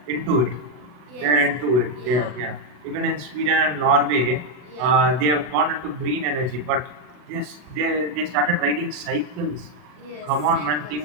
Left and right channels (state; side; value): late; left; 40 ms